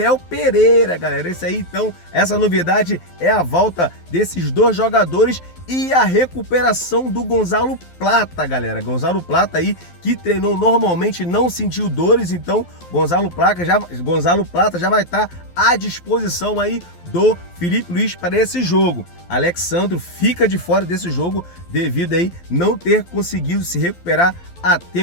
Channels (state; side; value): late; right; 12 ms